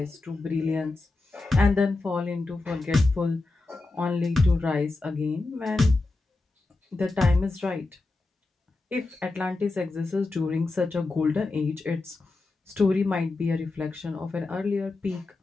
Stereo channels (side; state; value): right; quieter; 3.3 dB